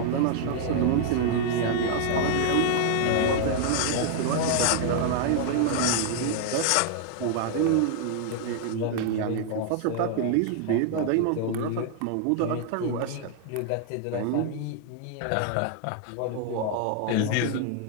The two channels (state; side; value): different; both; correlation 0.00